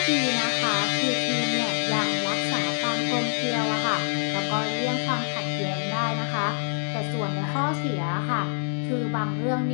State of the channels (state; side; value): silent; right; digital silence